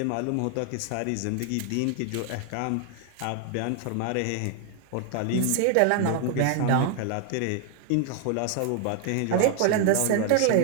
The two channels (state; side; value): different; both; correlation 0.00